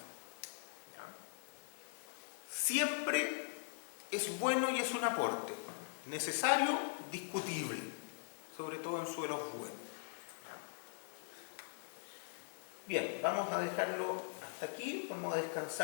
¿Ya? Siempre es bueno y es un aporte. Necesario, discutible, sobre todo en suelos buenos. ¿Ya? Bien, vamos a dejarlo hasta aquí, vamos a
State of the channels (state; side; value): silent; right; 50 dB below the other